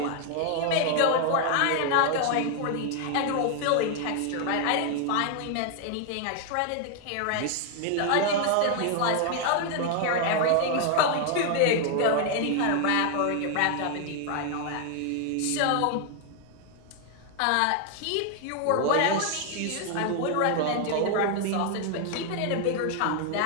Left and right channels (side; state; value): both; different; correlation 0.00